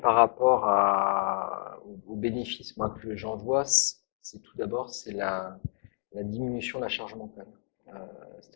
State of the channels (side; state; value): right; silent; 58 dB below the other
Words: par rapport aux bénéfices moi, que j'en vois, c'est tout d'abord c'est la diminution de la charge mentale.